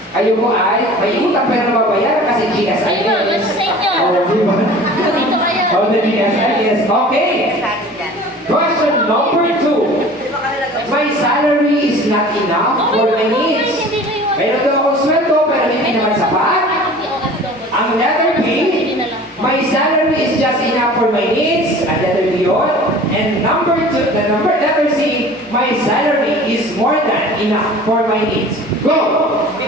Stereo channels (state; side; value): normal; both; correlation 0.43